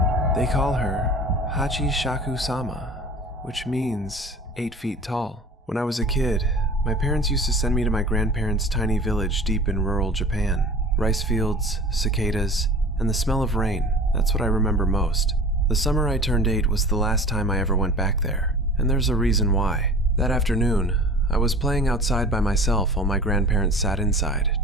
They call her Hachishakusama, which means 8 feet tall. When I was a kid, my parents used to send me to my grandparents' tiny village deep in rural Japan. Rice fields, cicadas, and the smell of rain, that's what I remember most. The summer I turned 8 was the last time I ever went back there, and there's a reason why. That afternoon, I was playing outside by myself while my grandparents sat inside,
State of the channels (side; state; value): both; normal; correlation 0.41